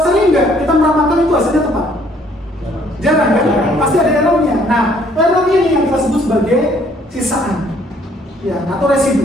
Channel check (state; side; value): normal; both; correlation 0.63